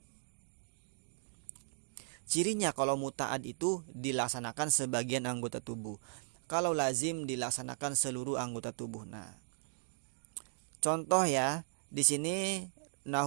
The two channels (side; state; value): left; silent; digital silence